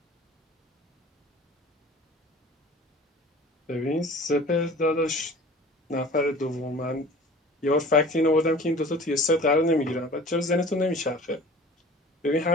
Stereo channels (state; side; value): normal; both; correlation 0.44